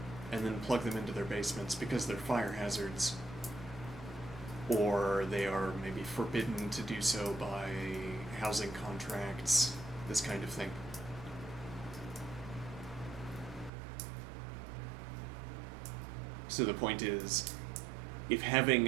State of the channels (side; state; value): left; drops out; at 13.7 s